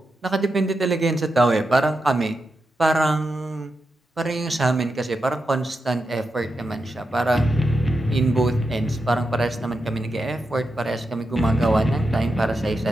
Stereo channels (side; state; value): both; normal; correlation 0.88